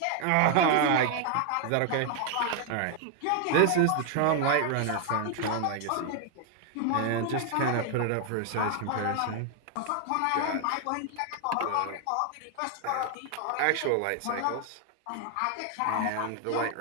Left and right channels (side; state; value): both; different; correlation 0.00